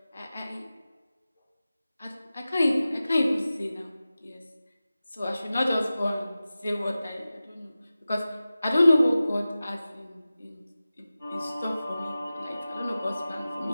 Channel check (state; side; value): inverted; both; correlation -0.96